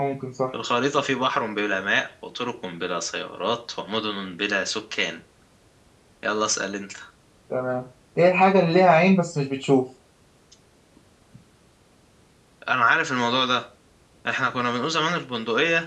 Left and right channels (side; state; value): both; identical; correlation 1.00